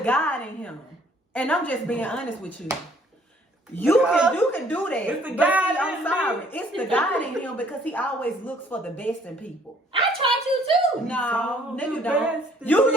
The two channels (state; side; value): normal; both; correlation 0.60